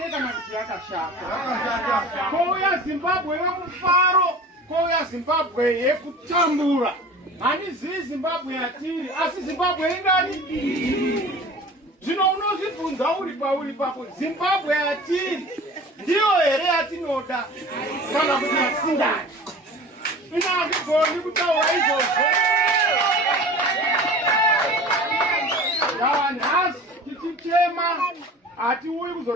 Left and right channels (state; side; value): normal; both; correlation 0.40